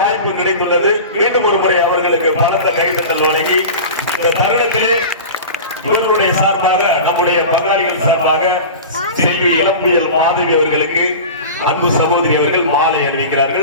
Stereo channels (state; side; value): inverted; both; correlation -0.33